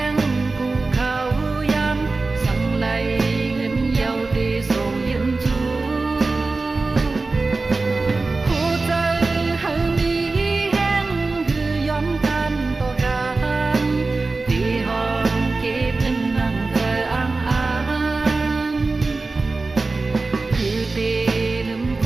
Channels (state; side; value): quieter; left; 3.6 dB